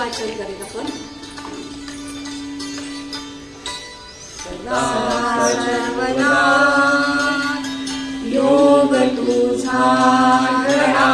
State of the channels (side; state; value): both; identical; correlation 1.00